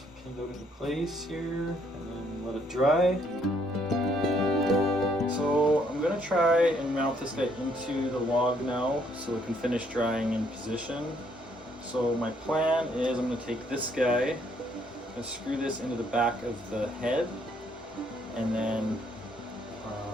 pinned out into place here and then let it dry. So I'm gonna try and mount this guy into the log now so it can finish drying in position. So my plan is I'm gonna take this guy and screw this into the back of the head, and then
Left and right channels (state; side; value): normal; both; correlation 0.69